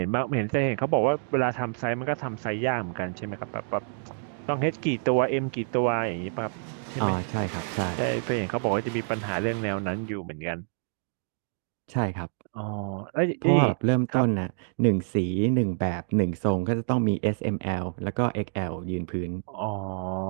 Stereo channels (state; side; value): silent; left; digital silence